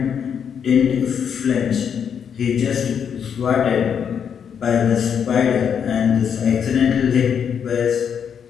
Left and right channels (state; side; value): quieter; right; 7.6 dB